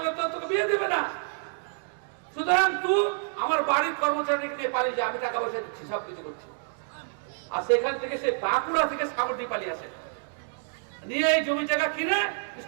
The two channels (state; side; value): silent; left; digital silence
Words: তো তোকে বিয়ে দেবে না, সুতরাং তুই আমার বাড়ির কর্মচারীকে নিয়ে পালিয়ে যা, আমি টাকা পয়সা দিচ্ছি, সবকিছু করছি। আর সেখান থেকে সে বাঁকুড়া থেকে সাগরদিঘি পালিয়ে আসে, নিয়ে এই জমি জায়গা কিনে